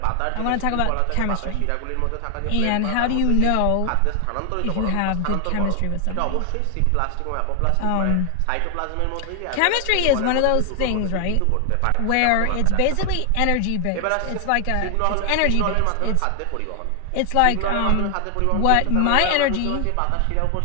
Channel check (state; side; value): different; both; correlation 0.00